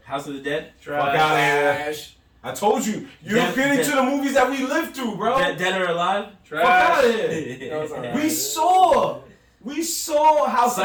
House of the Dead, Trash. Fuck out of here. Trash. I told you. You Dead- don't get into Dead- the movies that we lived through, bro. Dead or Alive. Fuck out of Trash. here. That was alright. We saw House of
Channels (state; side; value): identical; both; correlation 1.00